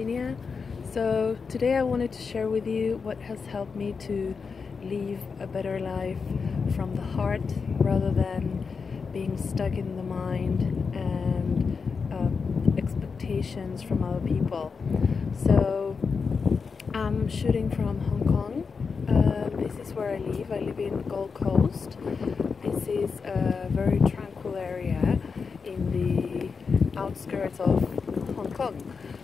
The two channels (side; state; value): right; quieter; 5.2 dB